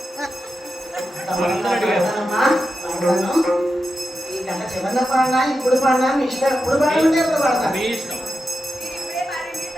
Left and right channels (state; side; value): normal; both; correlation 0.89